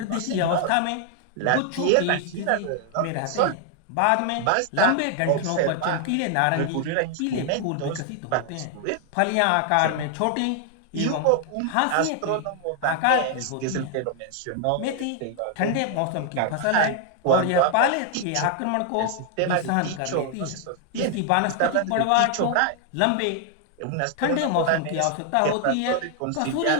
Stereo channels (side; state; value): both; different; correlation 0.00